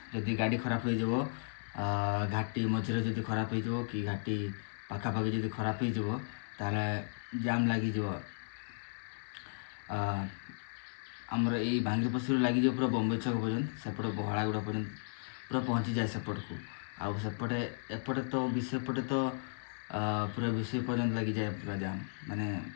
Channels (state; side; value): silent; right; digital silence